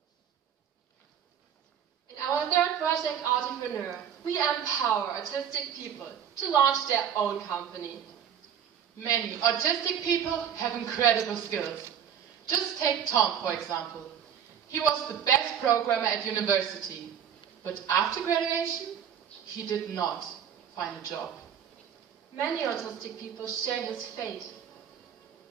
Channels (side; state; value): left; quieter; 8.8 dB